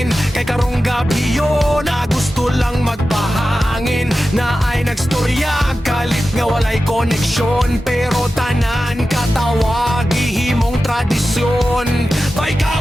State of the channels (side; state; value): both; normal; correlation 0.93